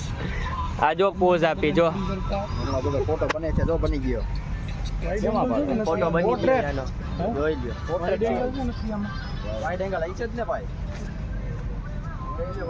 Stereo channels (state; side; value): identical; both; correlation 1.00